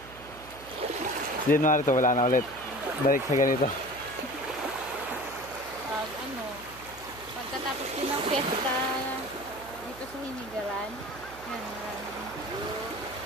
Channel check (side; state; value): right; noise; hum, 18 dB below the sound